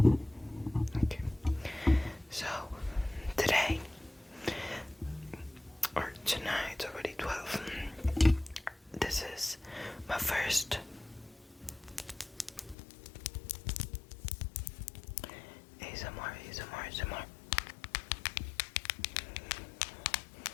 Okay. So, today, or tonight, it's already 12. This is my first ASMR.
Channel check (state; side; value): drops out; right; at 12.8 s